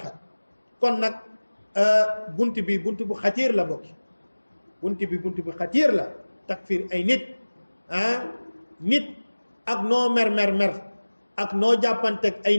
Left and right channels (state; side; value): inverted; both; correlation -1.00